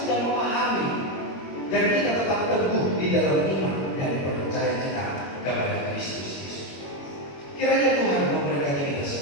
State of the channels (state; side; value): late; right; 21 ms